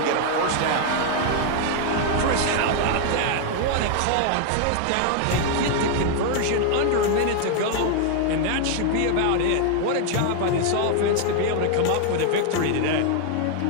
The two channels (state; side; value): different; both; correlation 0.00